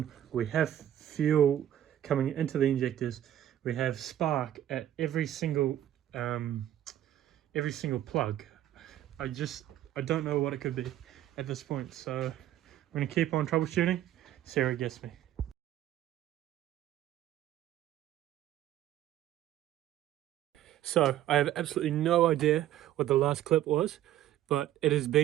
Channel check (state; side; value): quieter; left; 12.3 dB